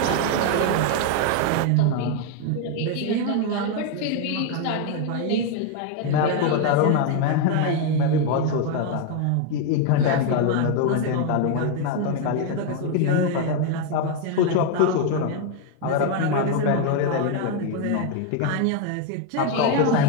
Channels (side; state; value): both; different; correlation 0.01